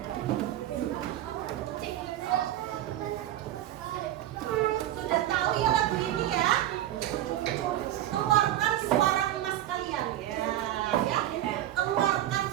Sudah tahu ya lagu ini ya? Keluarkan suara emas kalian ya. Keluarkan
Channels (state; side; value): quieter; left; 13.1 dB